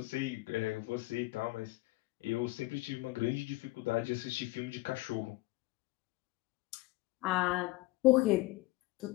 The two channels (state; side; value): quieter; right; 20.1 dB